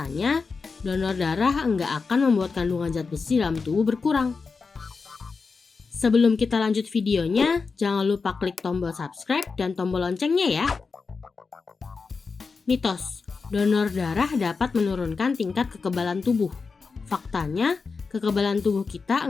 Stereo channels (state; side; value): quieter; right; 4.7 dB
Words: donor darah nggak akan membuat kandungan zat besi dalam tubuh berkurang. Sebelum kita lanjut videonya, jangan lupa klik tombol subscribe dan tombol loncengnya ya. Mitos, donor darah dapat menurunkan tingkat kekebalan tubuh. Faktanya, kekebalan tubuh kita